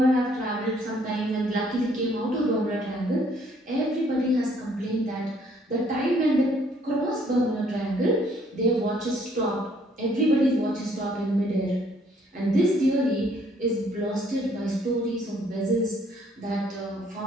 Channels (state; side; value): normal; both; correlation 0.64